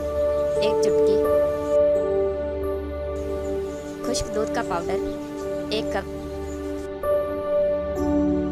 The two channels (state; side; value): identical; both; correlation 1.00